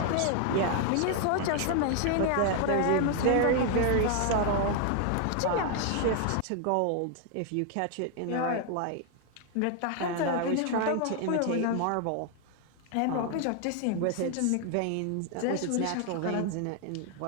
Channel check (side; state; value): both; different; correlation 0.00